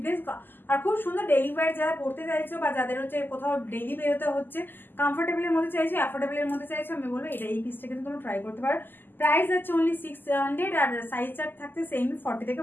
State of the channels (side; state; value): right; late; 0.092 ms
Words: আর খুব সুন্দর ডেইলি ওয়্যার যারা পড়তে চাইছো বা যাদের হচ্ছে কোথাও ডেইলি বেরোতে হচ্ছে, কমফোর্টেবল এর মধ্যে চাইছো, অ্যাফোর্ডেবল এর মধ্যে চাইছো, আমি বলবো এটা এই পিসটা কিন্তু তোমরা ট্রাই করতে পারো। প্রাইস আছে অনলি 600, আর সাইজ চার্ট থাকতে সেম 40 থেকে